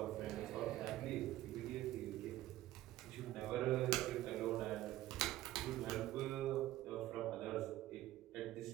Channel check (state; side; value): quieter; left; 15.1 dB